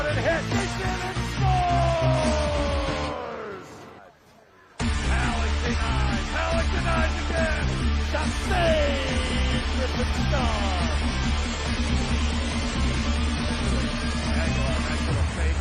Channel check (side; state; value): both; identical; correlation 1.00